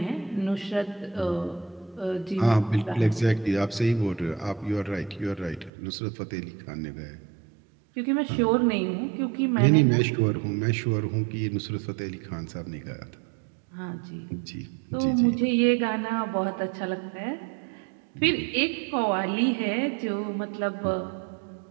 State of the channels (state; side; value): drops out; left; at 5.7 s